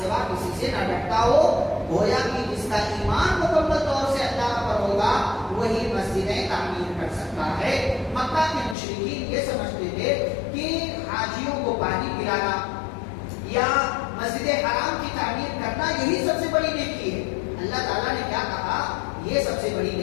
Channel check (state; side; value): drops out; right; at 8.8 s